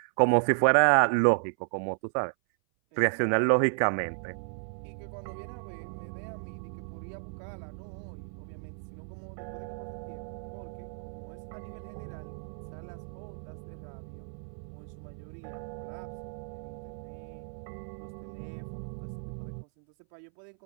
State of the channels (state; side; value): silent; left; 56 dB below the other